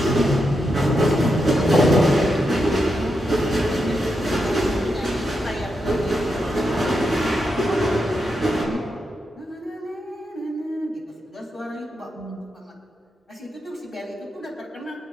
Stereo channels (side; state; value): both; normal; correlation 0.84